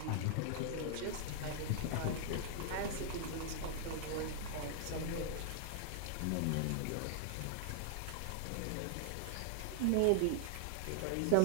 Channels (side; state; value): both; different; correlation 0.00